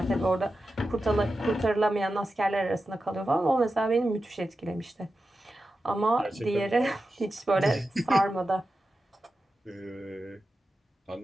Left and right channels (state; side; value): normal; both; correlation 0.91